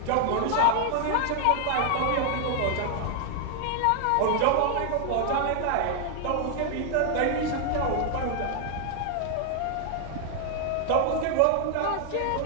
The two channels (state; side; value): different; both; correlation 0.00